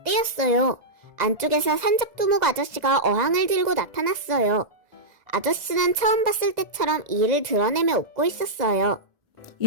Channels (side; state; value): left; late; 2.0 ms